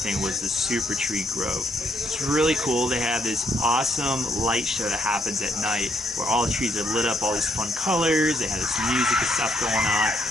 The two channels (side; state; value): both; normal; correlation 0.73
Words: thing was the Super Tree Grove. It's really cool. They have this awesome light show that happens at night where all the trees are lit up, all these fun colors. They have this music and stuff going on.